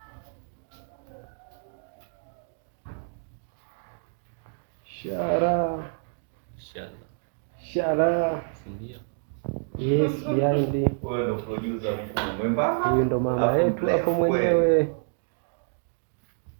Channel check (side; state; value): left; silent; digital silence